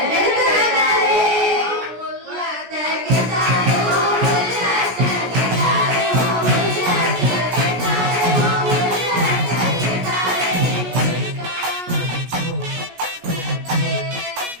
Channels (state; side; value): late; left; 17 ms